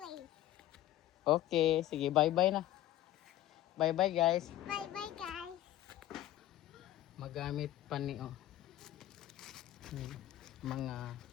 Okay, sige, bye-bye na. Bye-bye guys. Bye-bye, guys. Magamit pa ni mga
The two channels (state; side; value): quieter; right; 13.8 dB